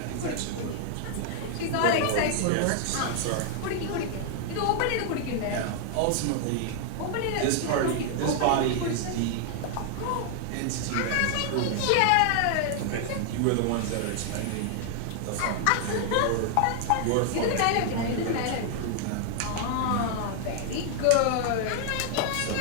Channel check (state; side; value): different; both; correlation 0.00